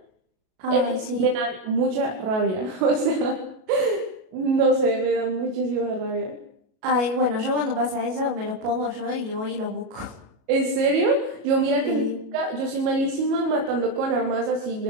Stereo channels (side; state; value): left; late; 37 ms